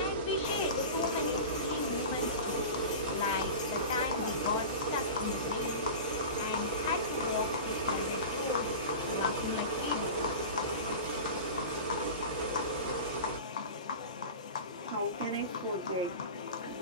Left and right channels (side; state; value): both; inverted; correlation -0.31